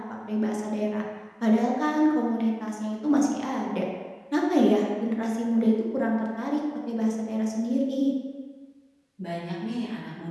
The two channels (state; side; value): identical; both; correlation 1.00